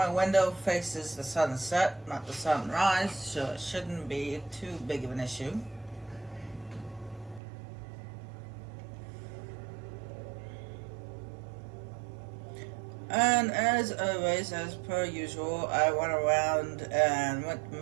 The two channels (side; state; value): left; drops out; at 7.4 s